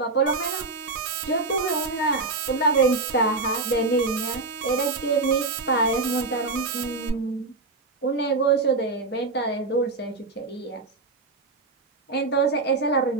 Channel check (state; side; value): quieter; left; 3.6 dB